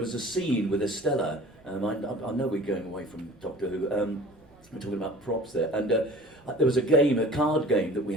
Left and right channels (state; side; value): normal; both; correlation 0.44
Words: a scene with Estella. I know we're going away from Doctor Who. We're talking about props there, and there was a card game that we